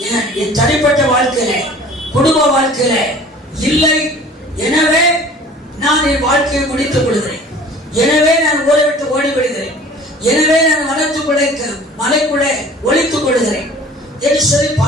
என் தனிப்பட்ட வாழ்க்கையில, குடும்ப வாழ்க்கையில இல்லை. எனவே நான் என் வாழ்க்கையை முடித்துக் கொள்கிறேன். எனவே நான் ஊரை விட்டு ஓடி விடுகிறேன். எனவே நான் வனத்துக்குள்ளே, மலைக்குள்ளே ஒளித்துக் கொள்கிறேன் என்று சொல்லி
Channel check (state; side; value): normal; both; correlation 0.46